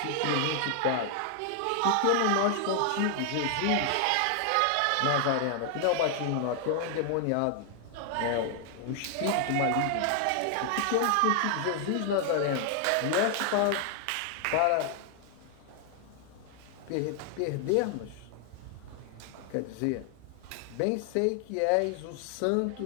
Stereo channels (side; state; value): both; different; correlation 0.00